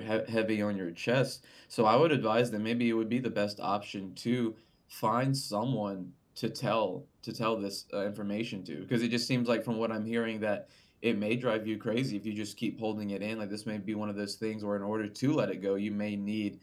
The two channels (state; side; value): identical; both; correlation 1.00